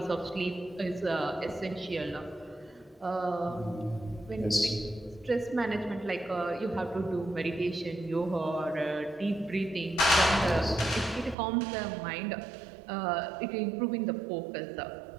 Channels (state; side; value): drops out; left; at 11.4 s